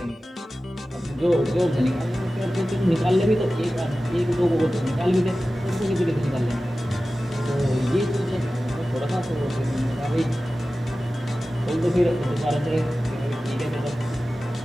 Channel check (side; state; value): both; normal; correlation 0.95